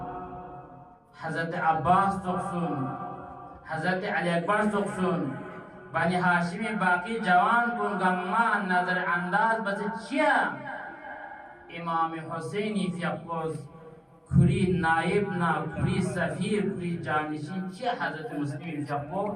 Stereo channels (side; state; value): both; identical; correlation 1.00